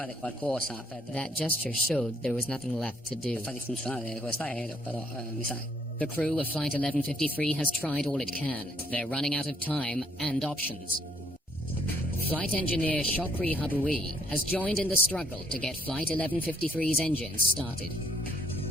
qualcosa per That gesture showed there was nothing left to do. far funzionare questo aereo, però mi sa. The crew of Flight 1153 has tried all it can. They're running out of time and options. Flight engineer Shokri Habui has joined in the struggle to get Flight 1153's engines started.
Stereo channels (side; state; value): both; normal; correlation 0.67